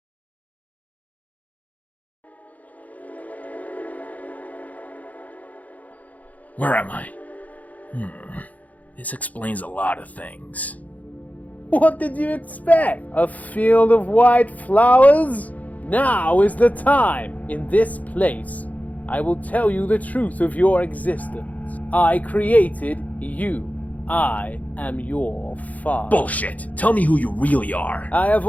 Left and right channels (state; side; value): late; right; 0.075 ms